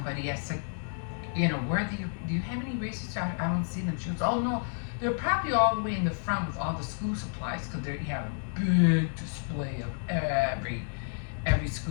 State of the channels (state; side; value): silent; right; 58 dB below the other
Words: I said, do you have any erasers? I don't see them. She goes, oh, no, they're probably all the way in the front with all the school supplies because they have a big display of every